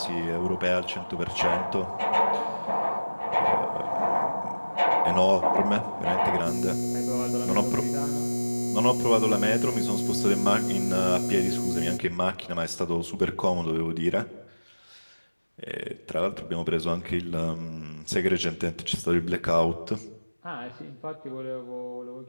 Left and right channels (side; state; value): both; inverted; correlation -1.00